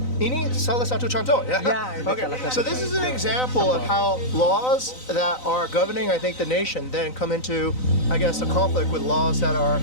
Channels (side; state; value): right; late; 3.9 ms